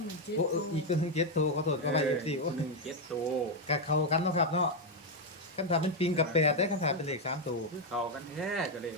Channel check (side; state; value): both; normal; correlation 0.03